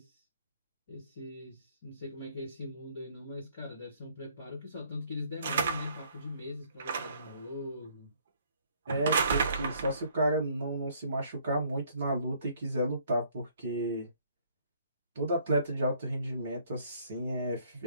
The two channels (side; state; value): both; inverted; correlation -0.63